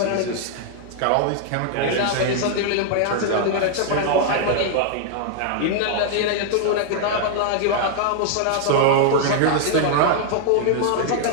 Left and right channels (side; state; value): both; different; correlation 0.00